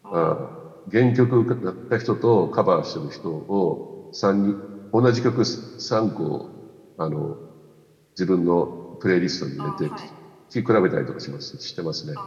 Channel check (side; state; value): both; identical; correlation 1.00